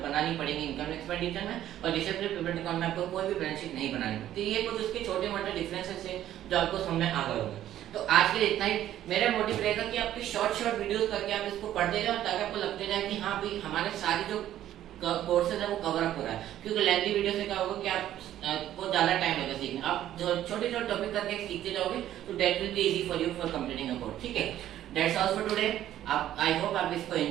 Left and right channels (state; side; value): quieter; left; 12.3 dB